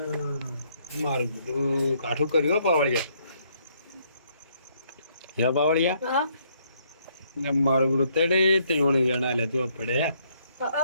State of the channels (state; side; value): inverted; both; correlation -0.69